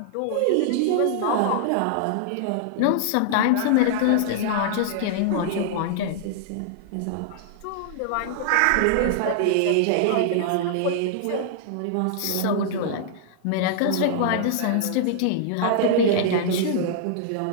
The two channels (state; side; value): different; both; correlation -0.01